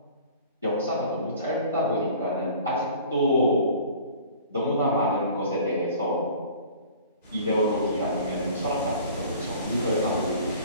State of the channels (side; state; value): both; inverted; correlation -0.46